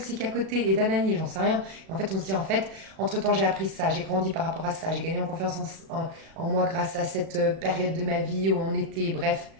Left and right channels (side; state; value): left; late; 37 ms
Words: à côté et d'anani, j'en sais rien. Et en fait, on se dit, en fait, entre-temps, j'ai appris ça, j'ai grandi par rapport à ça, j'ai gagné en confiance en moi grâce à cette période de ma vie où on était, bref.